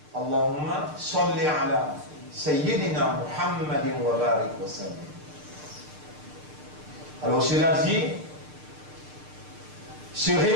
Allahumma salli ala Sayyidina Muhammadin wa barik wa sallam. Alors cela dit, se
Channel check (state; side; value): late; left; 6.6 ms